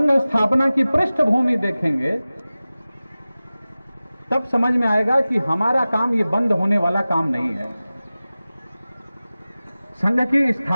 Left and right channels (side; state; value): both; inverted; correlation -0.97